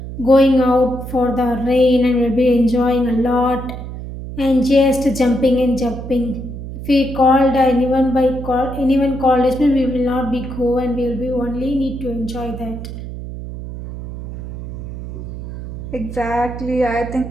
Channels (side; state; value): right; noise; hum, 9 dB below the sound